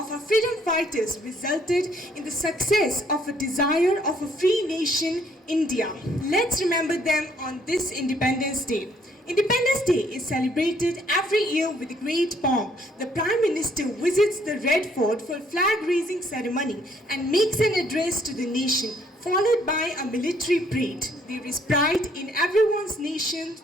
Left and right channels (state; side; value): normal; both; correlation 0.66